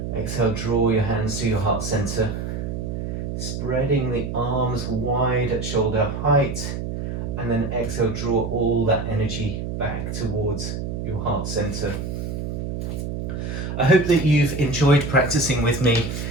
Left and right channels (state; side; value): noise; right; hum, 4 dB below the sound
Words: Exhale, draw your hands to your heart center. Spreading the arms wide at shoulder height. And then exhale, draw all that energy back towards your heart center. I hope that you've enjoyed practicing with me.